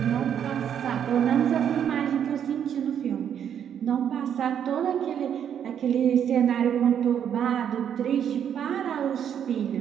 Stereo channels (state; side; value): quieter; left; 8.9 dB